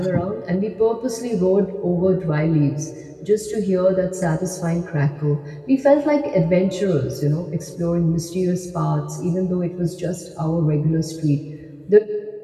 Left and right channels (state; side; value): identical; both; correlation 1.00